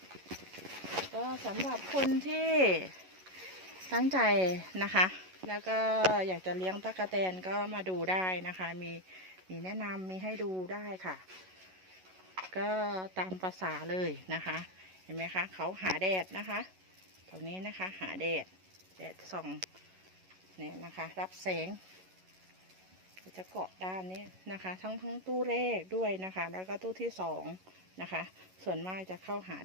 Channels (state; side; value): late; left; 11 ms